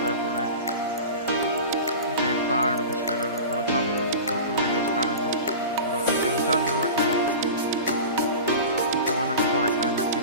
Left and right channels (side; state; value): both; inverted; correlation -0.33